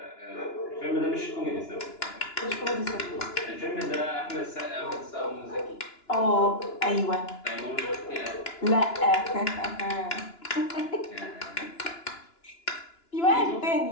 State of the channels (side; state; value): right; late; 2.9 ms